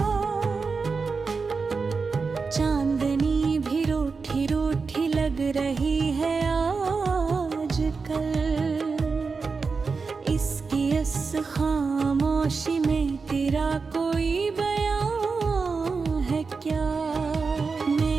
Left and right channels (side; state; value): left; quieter; 4.7 dB